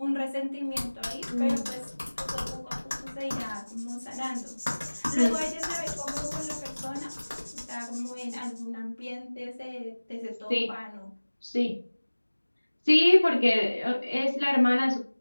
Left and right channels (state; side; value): inverted; both; correlation -1.00